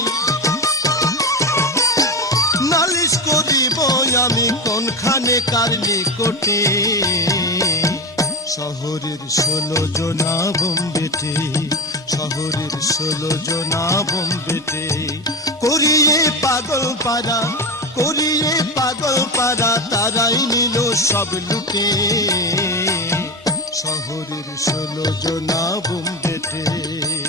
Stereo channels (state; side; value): normal; both; correlation 0.20